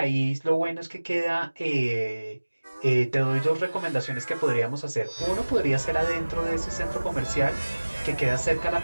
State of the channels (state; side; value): inverted; both; correlation -1.00